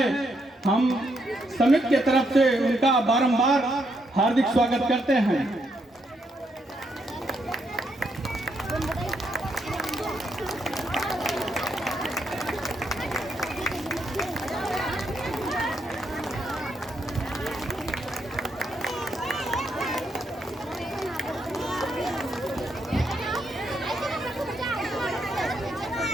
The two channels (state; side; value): normal; both; correlation 0.77